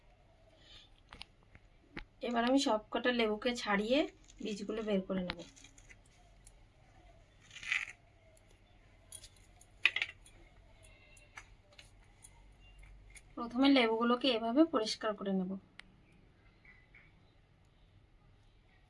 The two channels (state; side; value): identical; both; correlation 1.00